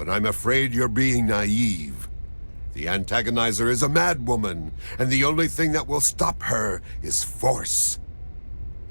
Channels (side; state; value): both; inverted; correlation -1.00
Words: I'm afraid you're being naive. The antagonizer is a madwoman, and the only thing that will stop her is force.